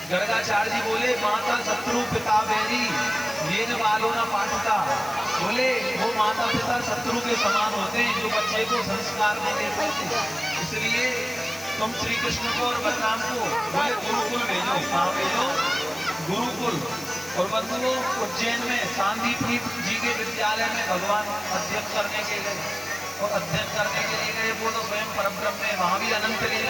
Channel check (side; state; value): left; noise; hiss, 18 dB below the sound